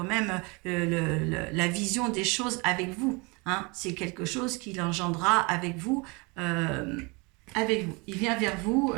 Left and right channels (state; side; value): quieter; left; 28.5 dB